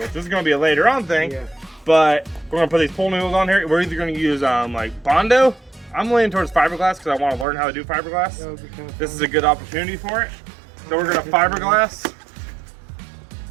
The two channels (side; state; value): left; drops out; at 7.5 s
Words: This is gonna be a later on thing, but we're gonna put these pool noodles on here. We're either gonna use like Bondo. I'm leaning towards fiberglass because I want to learn how to do fiberglass. This is a good opportunity for it. So we're gonna fiberglass